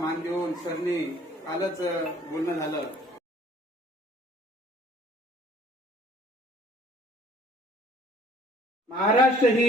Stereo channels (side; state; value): both; normal; correlation 0.55